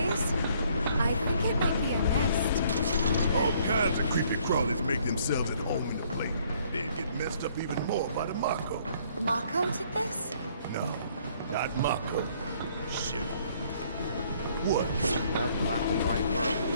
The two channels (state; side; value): inverted; both; correlation -0.63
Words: I think it might be a nest. All kinds of creepy crawlies make themselves at home in the place. They'd get messed up even more by the Mako. Mako did this? No, not Mako. Shit. What? That black and white world of